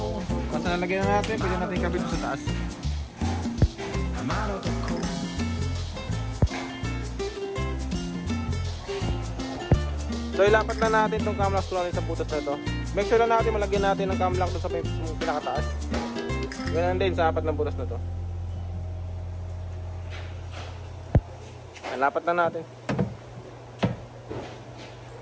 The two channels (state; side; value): identical; both; correlation 1.00